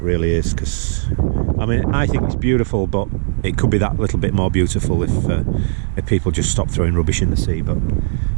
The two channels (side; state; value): left; silent; digital silence